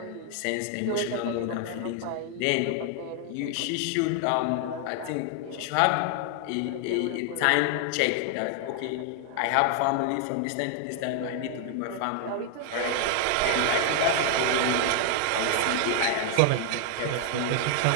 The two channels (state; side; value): different; both; correlation 0.00